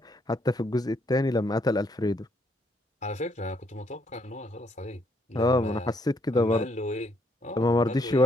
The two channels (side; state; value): both; normal; correlation 0.72